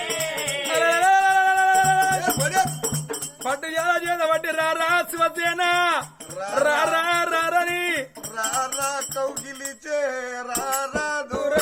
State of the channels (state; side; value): identical; both; correlation 1.00